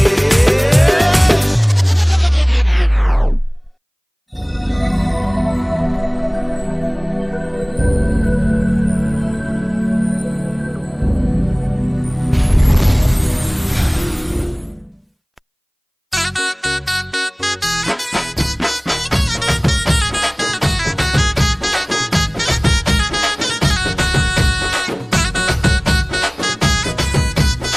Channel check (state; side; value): identical; both; correlation 1.00